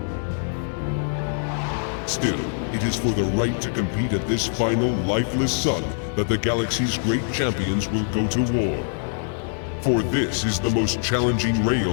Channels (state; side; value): silent; right; 58 dB below the other